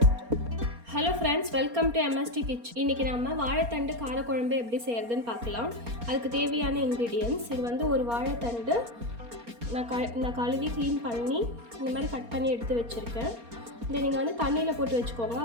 to MST kitchen. இன்றைக்கி நம்ம வாழைத்தண்டு காரக்குழம்பு எப்படி செய்கிறதுன்னு பார்க்கலாம். அதுக்கு தேவையான இன்க்ரீடியன்ட்ஸ், இது வந்து ஒரு வாழைத்தண்டு நான் கழுவி க்ளீன் பண்ணி இந்த மாதிரி கட் பண்ணி எடுத்து வச்சுருக்கேன். இதை நீங்கள் வந்து தண்ணியில் போட்டு வச்சுக்கோங்க,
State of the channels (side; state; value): left; late; 4.3 ms